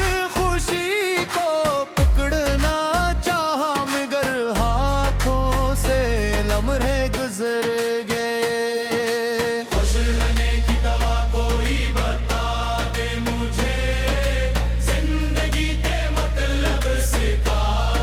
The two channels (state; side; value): identical; both; correlation 1.00